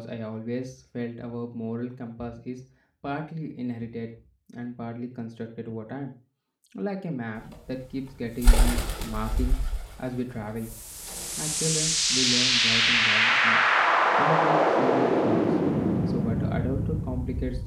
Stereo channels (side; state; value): both; identical; correlation 1.00